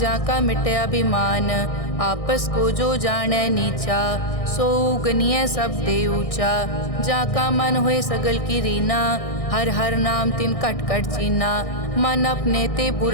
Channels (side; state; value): right; late; 1.6 ms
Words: मिटे अभिमान। आपस को जो जाने नीचा, सो गनिय सब ते ऊंचा। जाका मन होए सगल की रीना, हर हर नाम तिन कट कट चीना। मन अपने ते